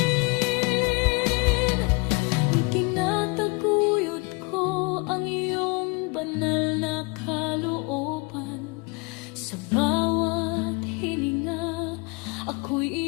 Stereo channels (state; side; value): quieter; right; 29.1 dB